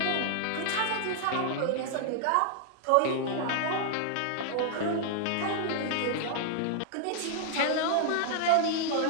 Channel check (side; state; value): both; different; correlation -0.01